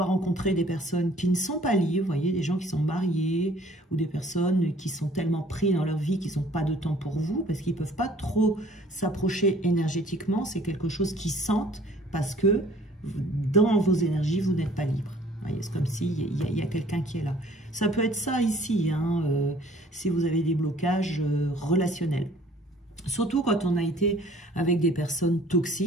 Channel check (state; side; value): normal; both; correlation 0.55